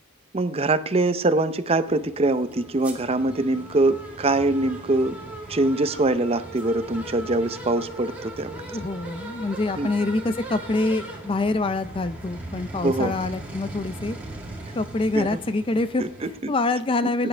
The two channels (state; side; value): normal; both; correlation 0.53